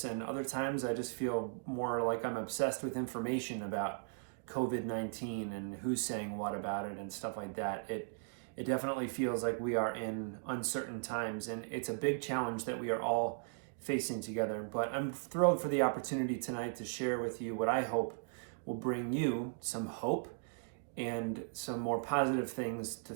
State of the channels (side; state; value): left; silent; digital silence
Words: and other times I just feel more like I'm obsessed with information about COVID-19 and who's saying what about it and stuff like that. It definitely feels like we are in uncertain times, and it's a big challenge that we are all facing together. But I'm thrilled for the opportunity tonight to share with you what I hope will bring you some hope and some more positive things to